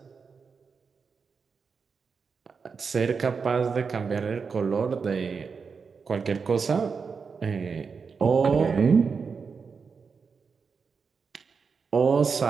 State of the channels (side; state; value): left; quieter; 5.4 dB